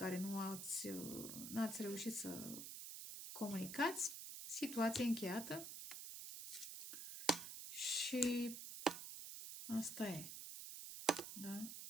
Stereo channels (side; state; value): right; noise; hiss, 8 dB below the sound